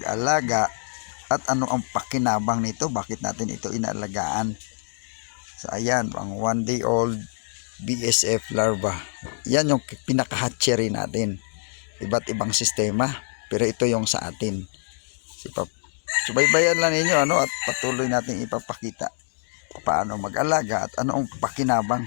at ano ang pakinabang nito. Bakit natin ito inaalagaan. So, ayan, ang 1-day-old BSF larva. Yan yung pinaka-hatchery natin. Iba't ibang sistema. Pero ito yung sa atin. Subaybayan lang ninyo at patuloy natin ipapakita kung paano mag-alaga at ano ang pakinabang.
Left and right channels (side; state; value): right; silent; digital silence